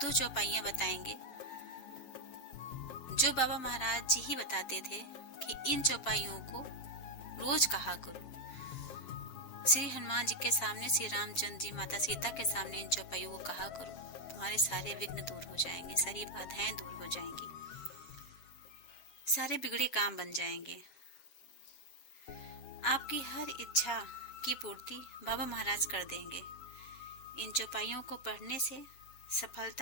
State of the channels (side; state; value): right; late; 7.6 ms